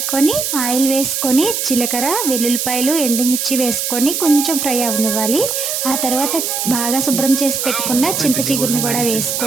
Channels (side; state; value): right; noise; hiss, 1 dB below the sound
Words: ఆయిల్ వేసుకొని జీలకర్ర, వెల్లుల్లిపాయలు, ఎండుమిర్చి వేసుకొని కొంచెం ఫ్రై అవనివ్వాలి. ఆ తర్వాత బాగా శుభ్రం చేసి పెట్టుకున్న చింత చిగురుని కూడా